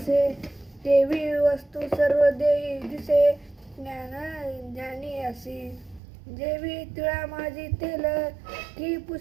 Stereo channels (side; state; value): left; drops out; at 6.0 s